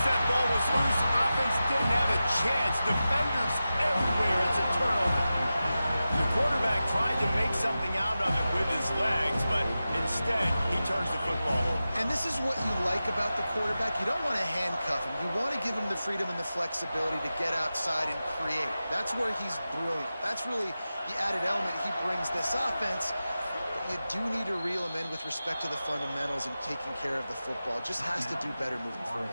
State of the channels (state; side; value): inverted; both; correlation -0.94